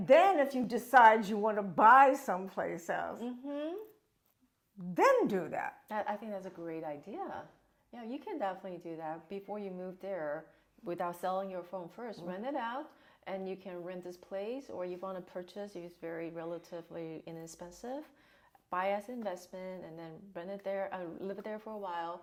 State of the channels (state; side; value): identical; both; correlation 1.00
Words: then if you decide you want to buy someplace else, then do that. I think that's a great idea. Yeah, you can definitely do that before you move there without selling your phone first. Rent it out, and you can rent this place, or you want to purchase if it's very relatively inexpensive. Buy as investment, and then rent it there, live there for a while,